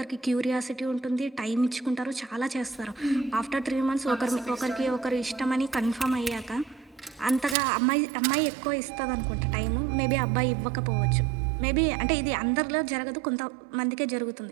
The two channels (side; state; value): left; drops out; at 7.6 s